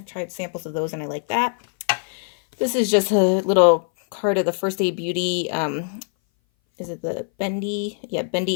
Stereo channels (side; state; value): right; silent; 59 dB below the other